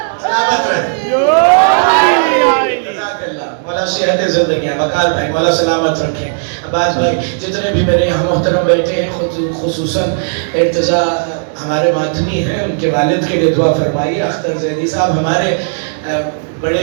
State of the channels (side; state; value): left; silent; digital silence